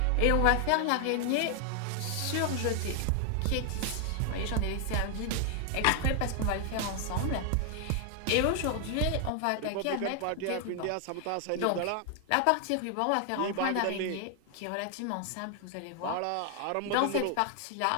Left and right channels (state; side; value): different; both; correlation 0.00